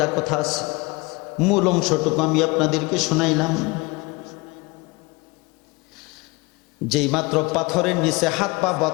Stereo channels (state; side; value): quieter; right; 25.6 dB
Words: কথা আছে। মূল অংশটুকু আমি আপনাদেরকে শোনাইলাম। যেই মাত্র পাথরের নিচে হাত পা